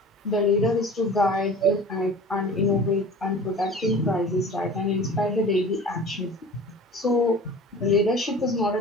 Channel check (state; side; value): normal; both; correlation 0.40